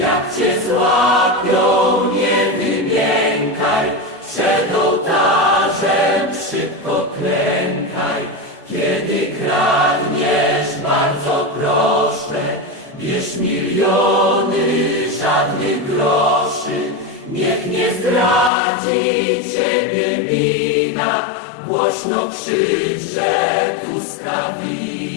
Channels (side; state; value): right; drops out; at 18.5 s